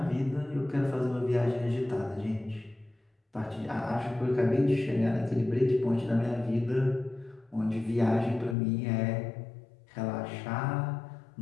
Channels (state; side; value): drops out; right; at 8.6 s